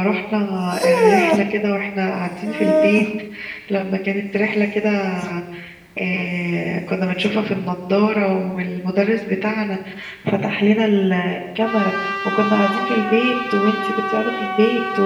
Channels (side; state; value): both; identical; correlation 1.00